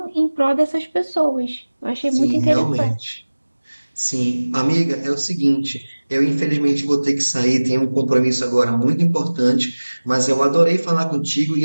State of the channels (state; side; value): inverted; both; correlation -1.00